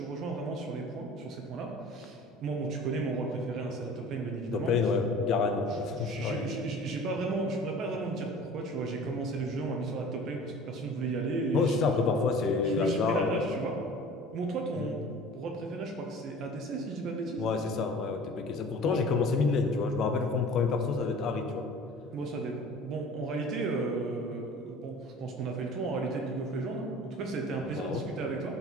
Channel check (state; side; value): normal; both; correlation 0.43